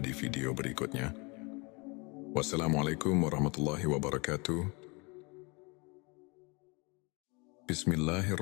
di video berikutnya. Wassalamualaikum warahmatullahi wabarakatuh.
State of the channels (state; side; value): quieter; right; 29.0 dB